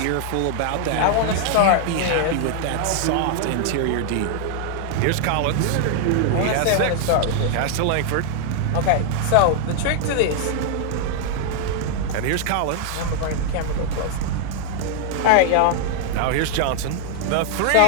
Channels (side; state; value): both; different; correlation -0.01